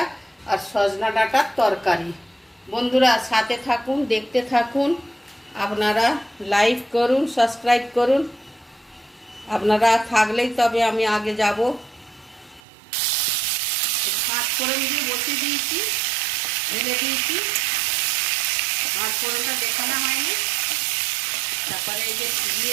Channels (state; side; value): drops out; left; at 12.6 s